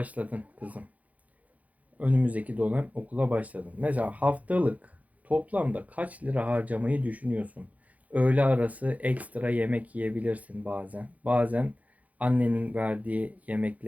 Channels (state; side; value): late; left; 0.072 ms